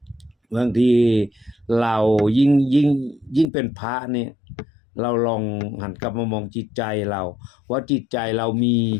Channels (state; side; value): drops out; right; at 3.5 s